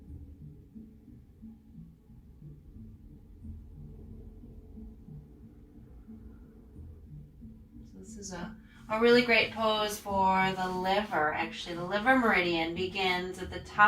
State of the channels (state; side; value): identical; both; correlation 1.00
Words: This is a really great pose for the liver. Actually, the liver meridian begins at the